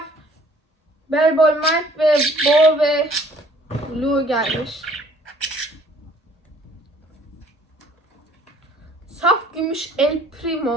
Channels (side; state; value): both; normal; correlation 0.57